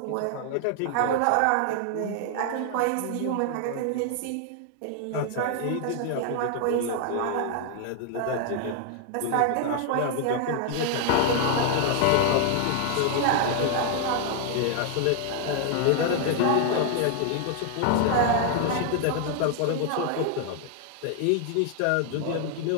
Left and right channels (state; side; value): different; both; correlation 0.00